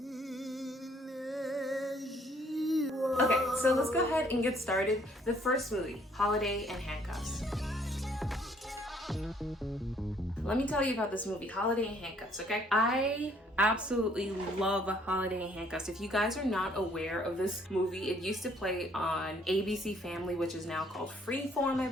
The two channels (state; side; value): normal; both; correlation 0.63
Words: Okay, so let's go ahead and get started. The first movie, Holiday and Handcuffs. Let me tell you about this movie, Holiday and Handcuffs, okay? I absolutely love Holiday and Handcuffs. If you guys are not aware of this movie, it used to play on ABC Family, which is now called Freeform, I